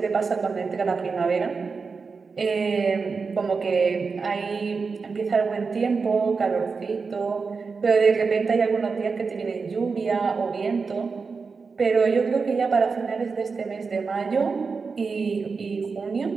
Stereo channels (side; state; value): left; quieter; 4.8 dB